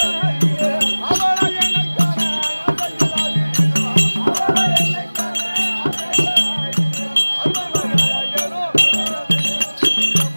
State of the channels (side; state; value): both; inverted; correlation -1.00